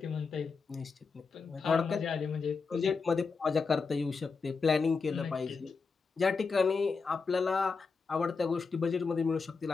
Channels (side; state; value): right; quieter; 4.8 dB